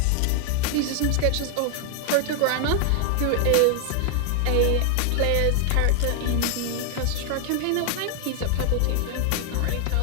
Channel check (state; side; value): different; both; correlation 0.00